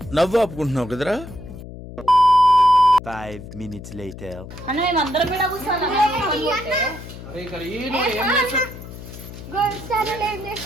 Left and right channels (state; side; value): noise; left; hum, 13 dB below the sound